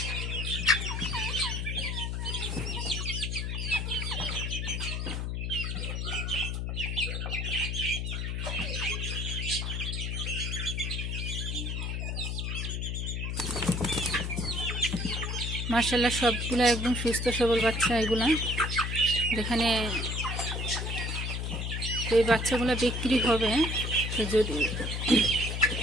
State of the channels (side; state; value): left; noise; hum, 2 dB below the sound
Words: মাশাআল্লাহ, সবগুলো একদম সুস্থ সবল বাচ্চা এগুলা। যেখানে এই বাচ্চাগুলো বিক্রি হবে, তো যদি